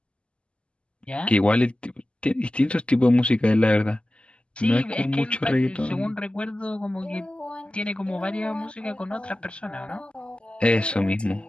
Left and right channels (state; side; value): late; right; 0.054 ms